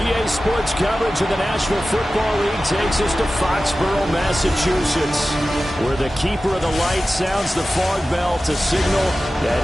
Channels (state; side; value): normal; both; correlation 0.95